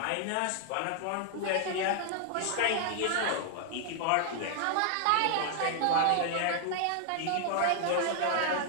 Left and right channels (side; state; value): both; different; correlation 0.00